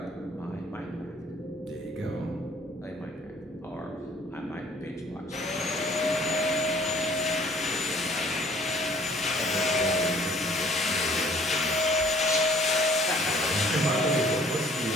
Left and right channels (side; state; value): both; normal; correlation 0.56